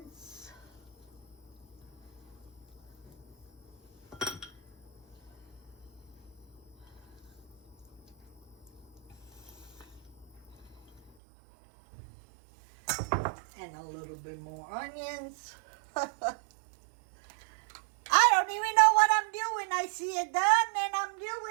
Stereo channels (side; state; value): left; drops out; at 11.1 s